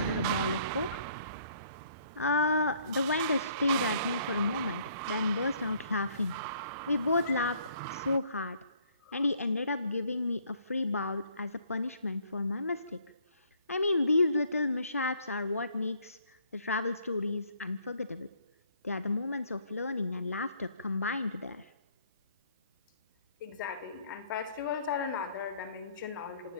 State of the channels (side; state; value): both; inverted; correlation -0.64